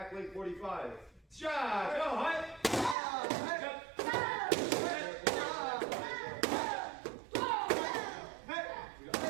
leg 45. Shot. Go. Hut.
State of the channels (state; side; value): drops out; left; at 3.0 s